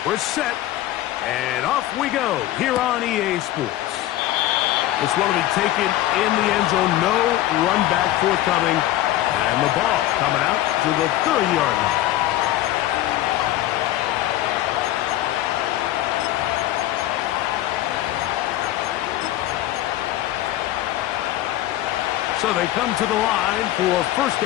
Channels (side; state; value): right; quieter; 14.5 dB